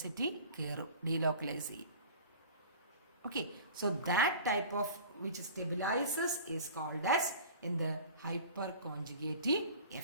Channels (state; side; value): inverted; both; correlation -0.42